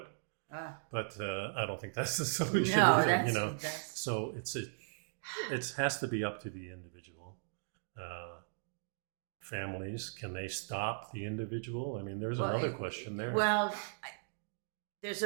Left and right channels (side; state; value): left; silent; digital silence